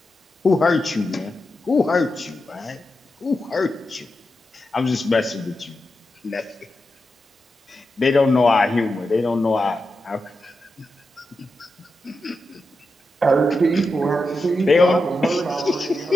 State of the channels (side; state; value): both; normal; correlation 0.89